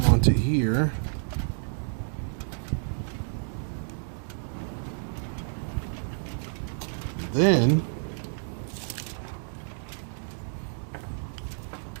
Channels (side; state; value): left; silent; digital silence